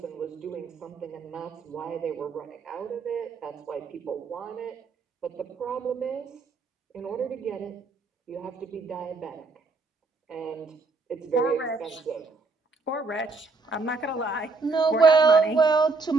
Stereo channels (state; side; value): quieter; left; 3.9 dB